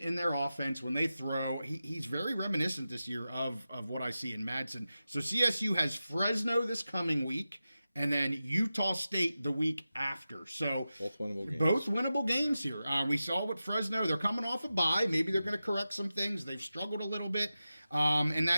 in their offense when they throw. He's very reminiscent this year of what I see in Madsen. So CSU has Fresno this coming week, and then Utah State the week after. So both winnable games here. We saw with Fresno, they're coming off a bye. Maybe they're going to correct some things. They've struggled a little bit. And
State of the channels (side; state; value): both; inverted; correlation -0.93